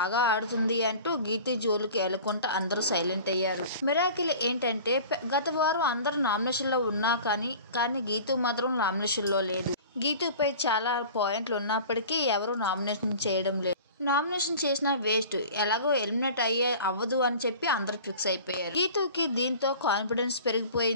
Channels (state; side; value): inverted; both; correlation -0.41